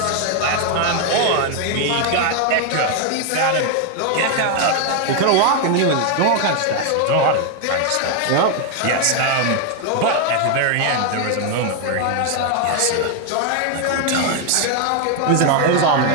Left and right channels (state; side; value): different; both; correlation 0.01